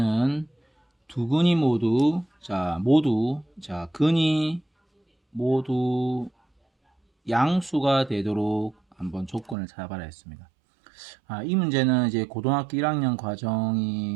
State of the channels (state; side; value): drops out; left; at 9.6 s